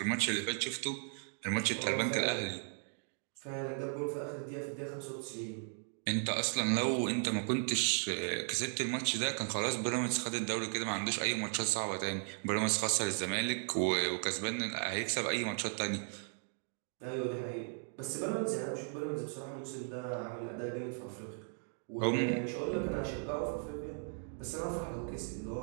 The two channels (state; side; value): silent; left; 53 dB below the other